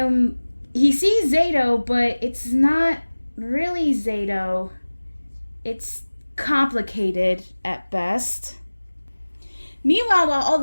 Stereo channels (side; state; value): both; inverted; correlation -1.00